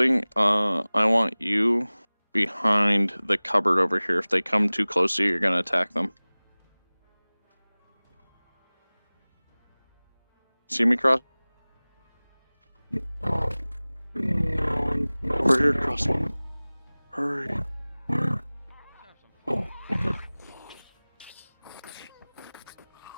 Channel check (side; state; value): both; inverted; correlation -1.00